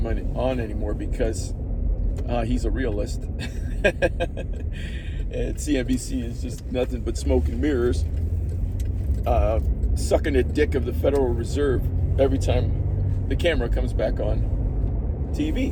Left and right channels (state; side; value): identical; both; correlation 1.00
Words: him on anymore because he's a realist. And CNBC is just nothing but smoke and mirrors, sucking the dick of the Federal Reserve every time the camera comes back on